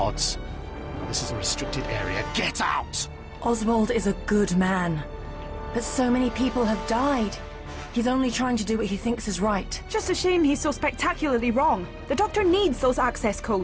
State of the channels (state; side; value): identical; both; correlation 1.00